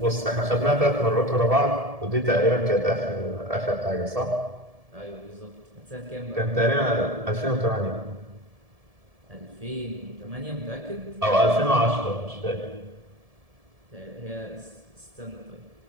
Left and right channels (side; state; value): left; late; 1.7 ms